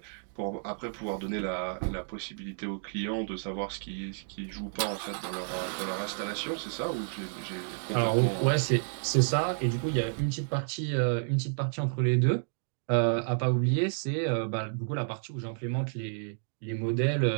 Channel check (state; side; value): silent; left; digital silence